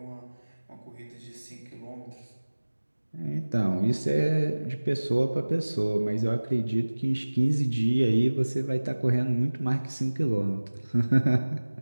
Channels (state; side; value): inverted; both; correlation -1.00